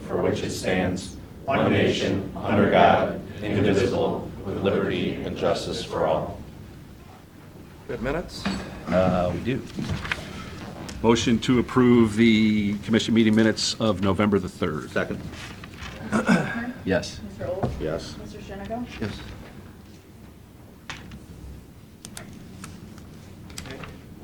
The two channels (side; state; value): both; identical; correlation 1.00